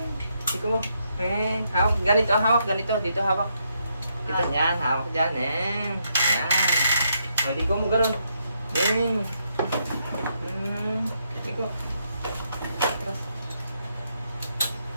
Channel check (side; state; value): both; inverted; correlation -0.78